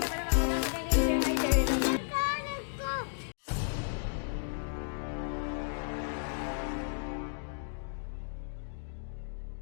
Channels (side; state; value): right; silent; digital silence